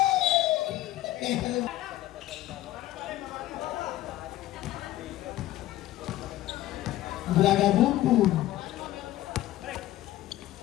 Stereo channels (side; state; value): right; quieter; 15.0 dB